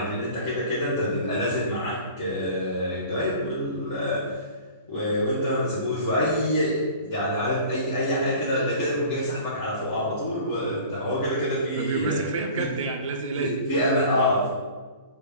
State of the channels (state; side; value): inverted; both; correlation -0.43